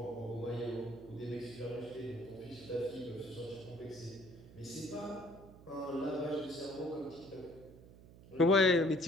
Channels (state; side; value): noise; right; hum, 20 dB below the sound